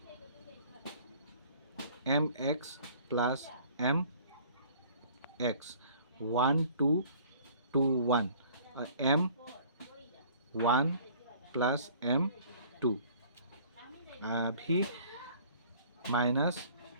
M X plus M X 1 2 2 1, और एम 1 प्लस एम 2। अभी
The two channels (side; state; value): both; inverted; correlation -0.53